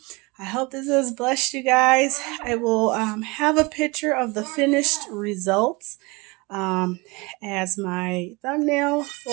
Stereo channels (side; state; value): left; quieter; 25.8 dB